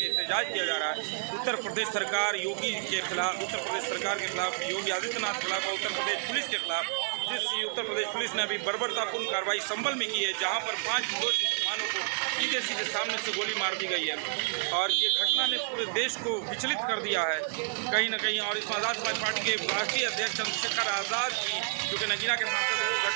किया जा रहा है उत्तर प्रदेश सरकार योगी के खिलाफ, उत्तर प्रदेश सरकार के खिलाफ, योगी आदित्यनाथ के खिलाफ और उत्तर प्रदेश पुलिस के खिलाफ। जिस उत्तर प्रदेश पुलिस ने अभी बर्बरतापूर्ण कार्रवाई संभल में की है, जहाँ पर 5 निर्दोष मुसलमानों को सीधे सीधे सामने से गोली मार दी गई है और ये घटना ने पूरे देश को विचलित कर दिया है कहीं ना कहीं। और इसमें आज़ाद समाज पार्टी के राष्ट्रीय अध्यक्ष चंद्रशेखर आज़ाद की, जो कि नगीना के सांसद वो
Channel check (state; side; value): silent; left; digital silence